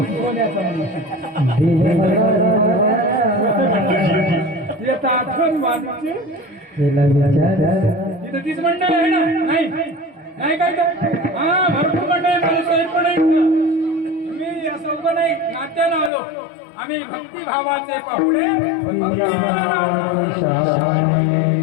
येता आठवण वाटते. तिथं तीच मंडळ आहे ना. नाही नाही काय तर हा भरपूर मंडळ माझे साहेब पण आहेत ना. मी असं उभं नाही नात्यानं आलो. आम्ही भक्तिभावाचे पाहुणे.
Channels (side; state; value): right; drops out; at 16.1 s